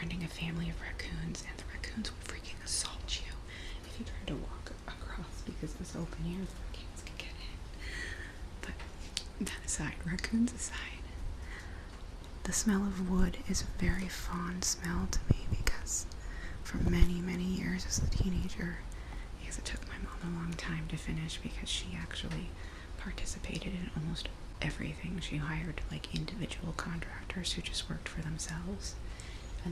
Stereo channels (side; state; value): both; identical; correlation 1.00